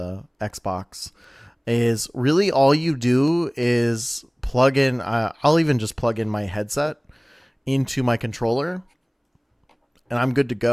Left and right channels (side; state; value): both; identical; correlation 1.00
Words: Xbox, is really all you do is plug in. I'll even just plug in my headset into my controller, and I'm good to